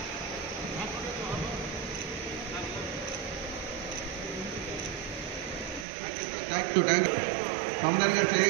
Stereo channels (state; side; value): drops out; left; at 5.9 s